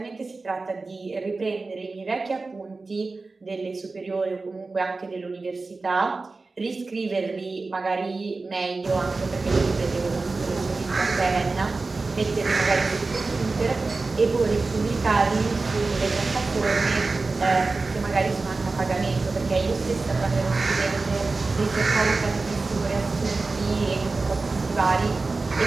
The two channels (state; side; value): quieter; left; 3.7 dB